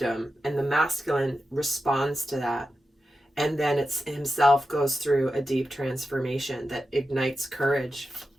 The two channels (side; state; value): both; normal; correlation 0.91